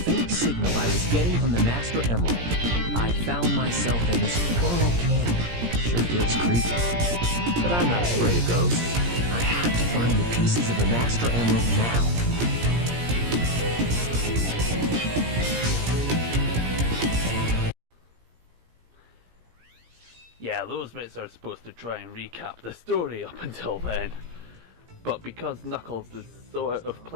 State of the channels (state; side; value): late; left; 17 ms